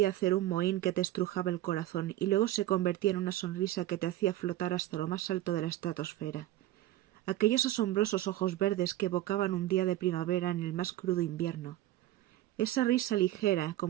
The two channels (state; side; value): quieter; left; 14.6 dB